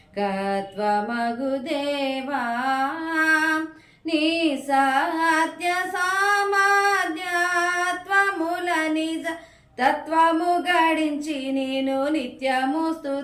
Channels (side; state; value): both; identical; correlation 1.00